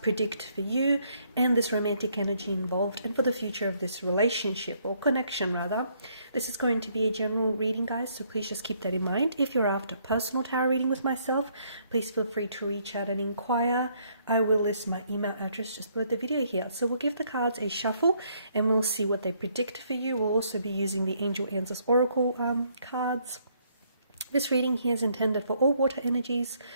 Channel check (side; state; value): both; inverted; correlation -0.69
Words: for you and this romantic energy involved, and for the future of this relationship or connection rather. This is going to be a general reading, guys, so please just keep that in mind. If you're after personal tarot reading with myself, please feel free to reach out and inquire. I will list my email address just below the video here. So we'll give the cards a shuffle and we'll see what they predict for you. We'll also be using the Angel Answers Oracle cards. This reading here is intended for all water energies,